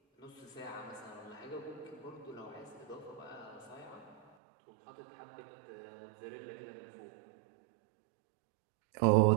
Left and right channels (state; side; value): drops out; left; at 4.2 s